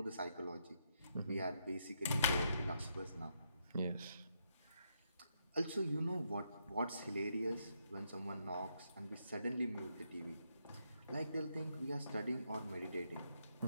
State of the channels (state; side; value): inverted; both; correlation -0.78